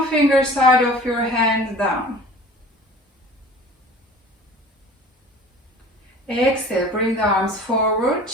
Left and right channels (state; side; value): normal; both; correlation 0.43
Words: finger side of your hand down. Exhale, bring the arms forward,